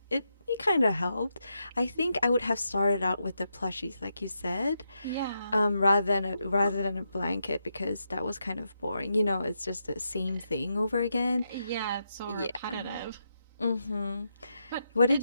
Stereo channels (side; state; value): both; inverted; correlation -0.83